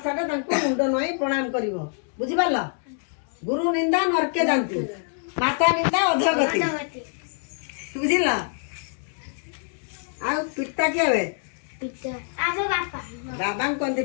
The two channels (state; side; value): silent; right; 59 dB below the other